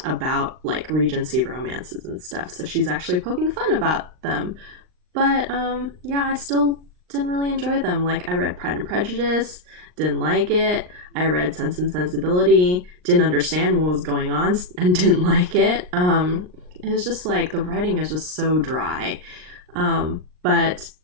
about like Regency romances and stuff, so she's actually poking fun about them. But yeah, I still didn't really enjoy them. Like I read Pride and Prejudice, didn't like it. I read Sense and Sensibility, didn't understand what was going on and didn't like it. It was just like the writing is just so dry. But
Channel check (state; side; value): late; left; 39 ms